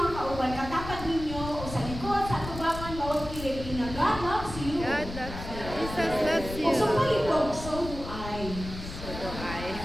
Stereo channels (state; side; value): noise; left; rumble, 9 dB below the sound